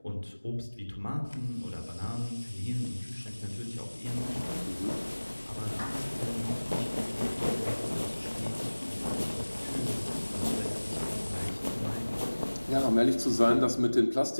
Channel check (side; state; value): both; inverted; correlation -1.00